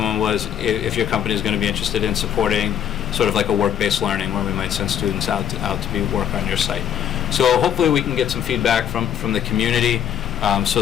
your company is going to be interested in supporting sort of like a work-based learning, where we might send students out to be work on your site. So hopefully we can get some feedback from the community, so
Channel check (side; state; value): right; quieter; 9.6 dB